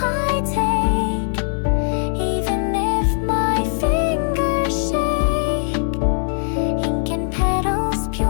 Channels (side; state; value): right; silent; digital silence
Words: take, even if my fingers shake. Ink and petals, pure